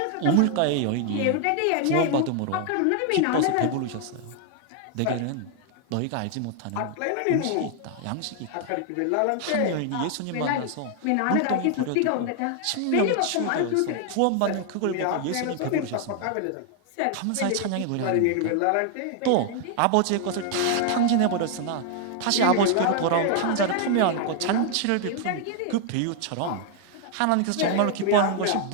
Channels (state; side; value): different; both; correlation 0.00